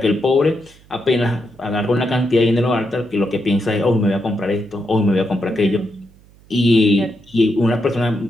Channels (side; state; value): right; noise; hum, 27 dB below the sound